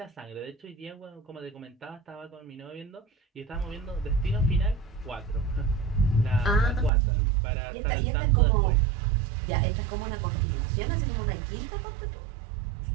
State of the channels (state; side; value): drops out; left; at 6.9 s